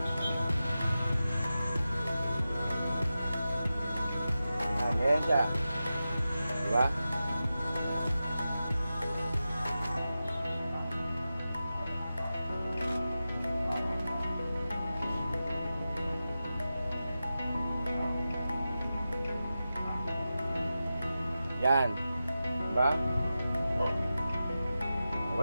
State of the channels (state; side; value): inverted; both; correlation -0.92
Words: Ayan siya. Di ba? Yan. Diba?